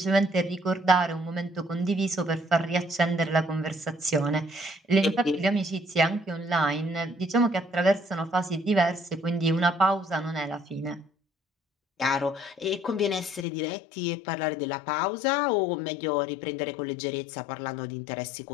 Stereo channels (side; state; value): right; drops out; at 13.5 s